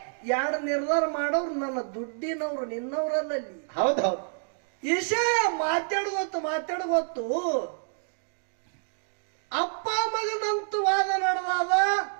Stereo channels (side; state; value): left; silent; digital silence